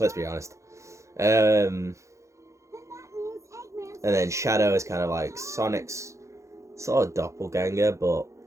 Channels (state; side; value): late; left; 0.15 ms